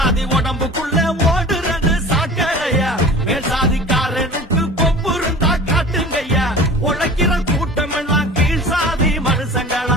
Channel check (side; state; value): both; normal; correlation 0.40